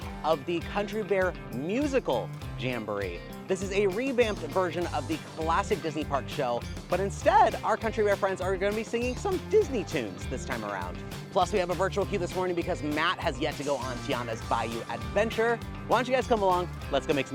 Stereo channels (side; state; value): both; identical; correlation 1.00